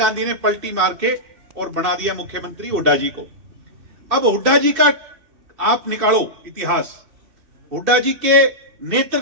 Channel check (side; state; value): left; late; 2.6 ms